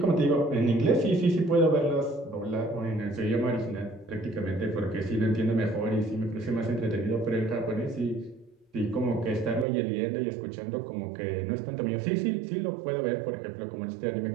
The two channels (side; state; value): left; drops out; at 9.7 s